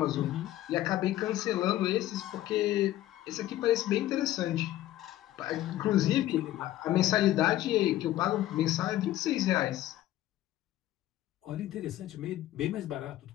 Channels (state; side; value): quieter; right; 14.3 dB